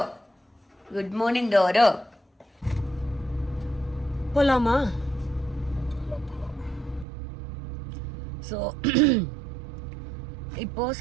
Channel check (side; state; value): left; drops out; at 7.1 s